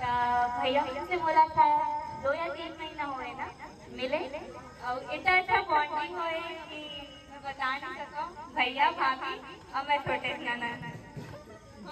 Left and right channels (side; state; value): both; identical; correlation 1.00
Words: भैया से मुलाकात 2 या 3 महीना हुए ना मिले और इतना अच्छा बॉन्डिंग हुए कि मैं बता नहीं सकूं। भैया भाभी और मैं छोटे नाना